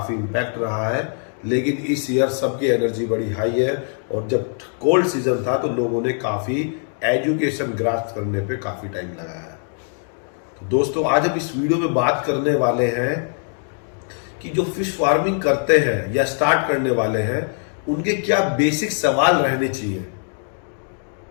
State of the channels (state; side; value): silent; right; 56 dB below the other